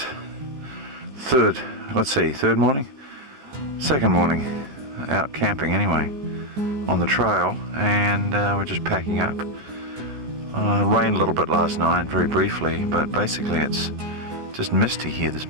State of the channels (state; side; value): late; left; 14 ms